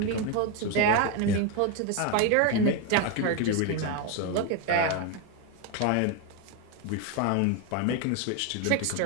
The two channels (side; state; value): both; different; correlation 0.02